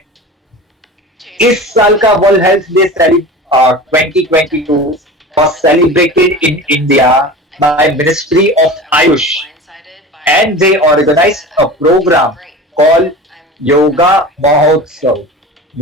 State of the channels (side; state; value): both; normal; correlation 0.34